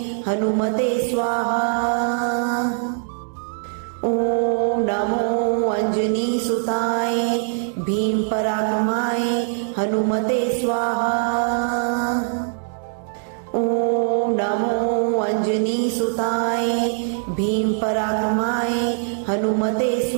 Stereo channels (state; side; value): silent; left; digital silence